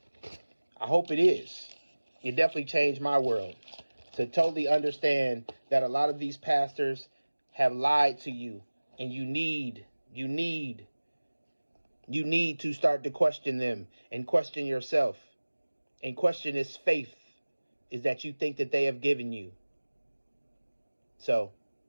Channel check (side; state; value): both; inverted; correlation -1.00